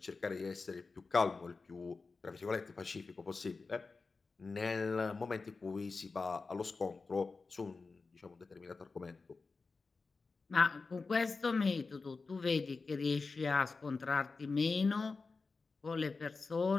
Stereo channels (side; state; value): right; quieter; 4.2 dB